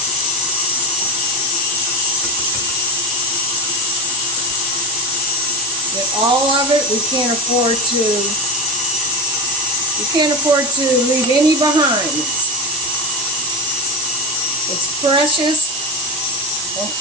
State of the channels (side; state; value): right; noise; hiss, 5 dB below the sound